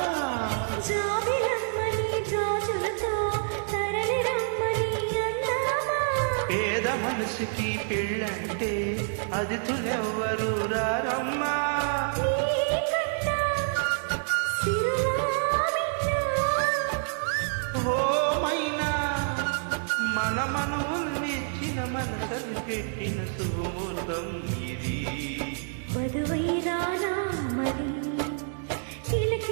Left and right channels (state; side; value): silent; left; digital silence